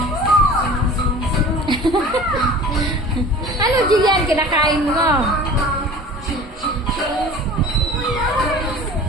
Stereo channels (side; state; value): both; normal; correlation 0.42